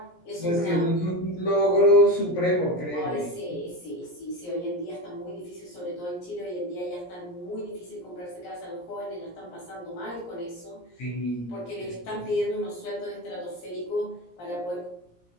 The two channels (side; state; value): right; late; 17 ms